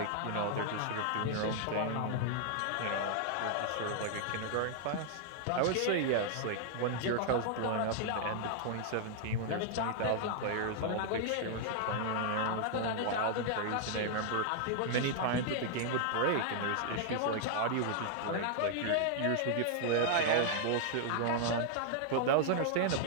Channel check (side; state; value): both; different; correlation 0.00